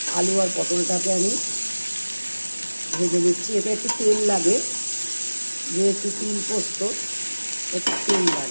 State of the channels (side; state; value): both; inverted; correlation -1.00